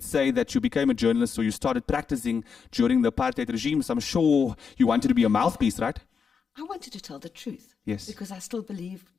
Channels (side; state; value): right; quieter; 6.0 dB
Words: say that you became a journalist, or you started practicing during the apartheid regime. So I'm sure you wanted to be a mouthpiece, right? I wanted to tell the truth. Yes. Because I still believe